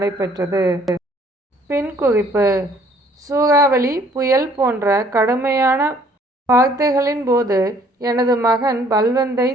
பின் குறிப்பு: சூறாவளி, புயல் போன்ற கடுமையான வார்த்தைகளின் போது எனது மகன் பல்வந்தை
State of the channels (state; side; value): normal; both; correlation 0.60